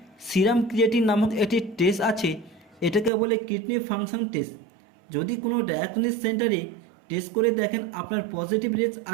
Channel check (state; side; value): drops out; left; at 3.1 s